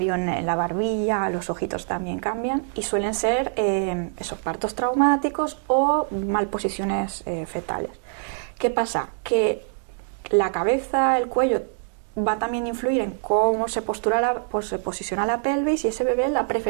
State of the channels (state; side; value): silent; left; digital silence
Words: en la barbilla, los ojitos también cambian, y suelen ser esos partos traumáticos o malposiciones fetales. ¿Qué pasa? Que la cabeza, el cuello, va también a influir en cómo se posiciona la pelvis, y ese bebé la